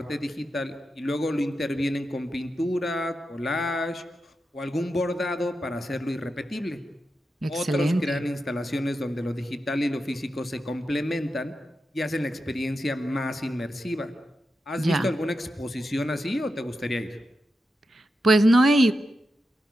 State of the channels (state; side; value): normal; both; correlation 0.89